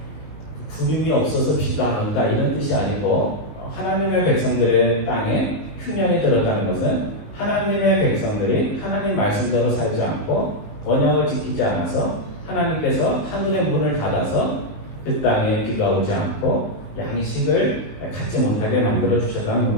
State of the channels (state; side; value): late; right; 19 ms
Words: 구름이 없어서 비가 안 온다 이런 뜻이 아니고 하나님의 백성들의 땅에 흉년이 들었다는 것은 하나님의 백성들이 하나님 말씀대로 살지 않고 언약을 지키지 않아서 하나님께서 하늘의 문을 닫아서 그 땅에 비가 오지 않고 양식을 갖지 못하게 만들어 주셨다는